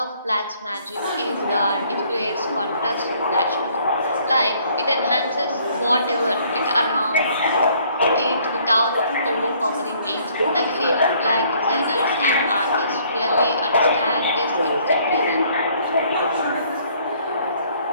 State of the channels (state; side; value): inverted; both; correlation -0.62